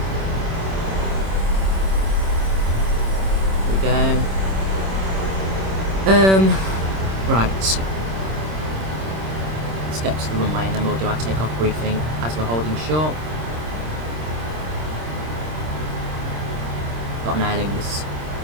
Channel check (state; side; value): late; left; 26 ms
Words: There we go. Right. Let's get to the runway and then we'll do our takeoff briefing as we're holding short. Got an airling just